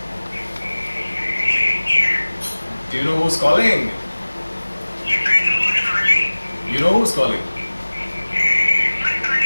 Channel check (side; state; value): both; inverted; correlation -1.00